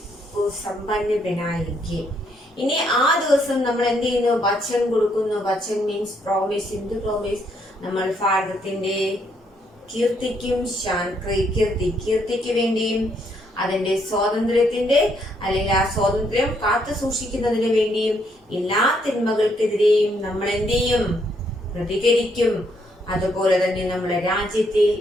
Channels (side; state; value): both; normal; correlation 0.72